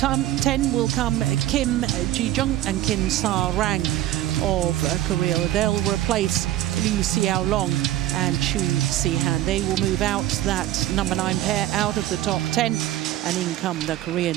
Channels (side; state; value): left; quieter; 13.9 dB